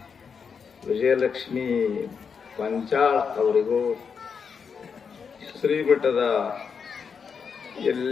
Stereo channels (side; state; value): right; quieter; 6.1 dB